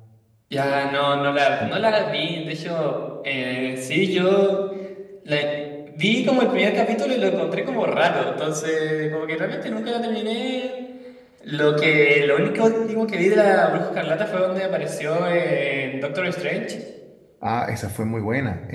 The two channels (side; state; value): both; identical; correlation 1.00